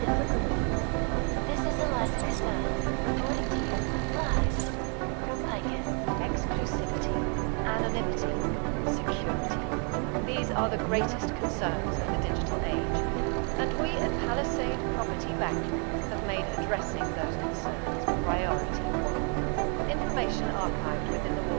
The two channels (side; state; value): left; quieter; 37.6 dB